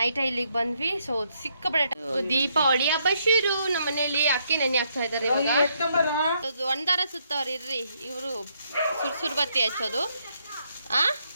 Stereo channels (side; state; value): both; inverted; correlation -0.75